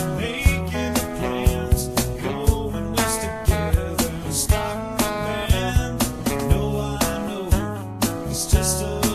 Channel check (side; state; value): both; identical; correlation 1.00